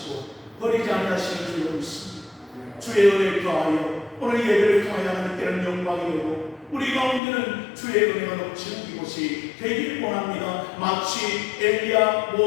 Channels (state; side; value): drops out; right; at 7.2 s